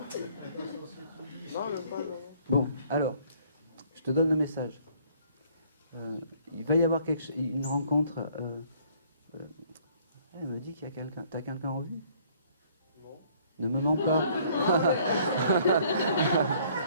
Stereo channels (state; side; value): inverted; both; correlation -0.60